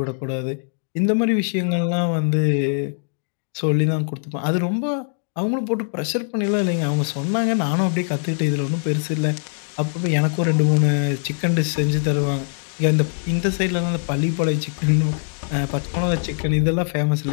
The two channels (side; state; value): right; silent; digital silence